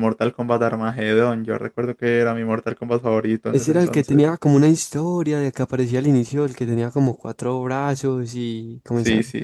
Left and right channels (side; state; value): both; identical; correlation 1.00